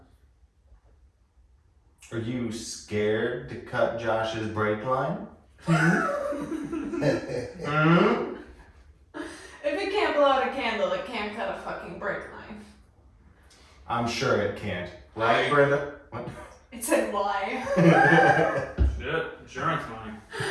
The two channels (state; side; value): identical; both; correlation 1.00